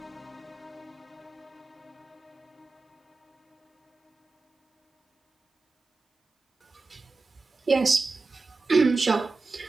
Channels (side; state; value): left; quieter; 3.8 dB